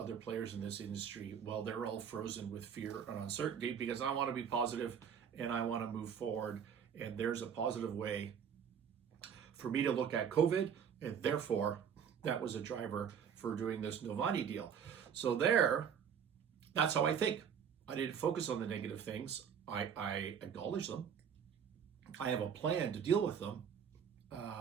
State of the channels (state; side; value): quieter; left; 7.7 dB